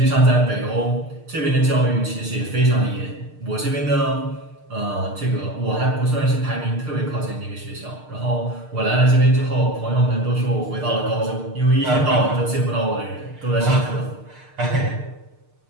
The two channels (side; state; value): left; late; 6.6 ms